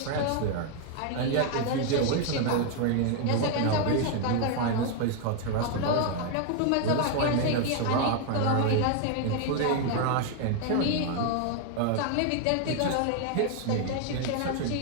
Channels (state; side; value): different; both; correlation 0.00